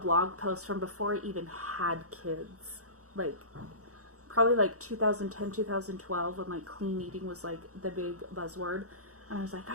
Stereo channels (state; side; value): late; left; 0.65 ms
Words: post from before I even had kids. Like, probably like 2010, 2012, when like clean eating was like the big buzzword. And I was like,